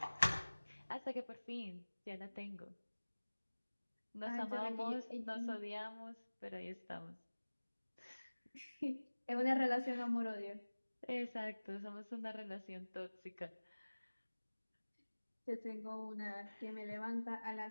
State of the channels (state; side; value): inverted; both; correlation -1.00